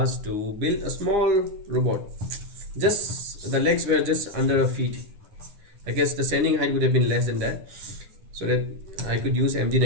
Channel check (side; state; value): left; late; 9.8 ms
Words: to build a small robot. Just the legs were just under a feet. I guess the standing height would have been less than that, so that I could use